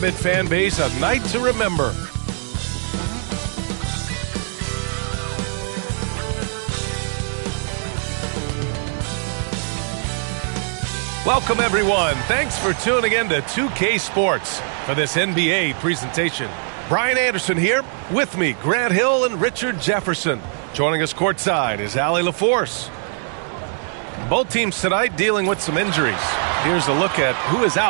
fan base a night to remember. Welcome, everyone. Thanks for tuning in to 2K Sports for this NBA presentation. Brian Anderson here. With me, Grant Hill and Richard Jefferson. Joining us courtside is Allie LaForce. Both teams tonight dealing with some injuries. Here's a look at who is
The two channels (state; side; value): silent; left; 65 dB below the other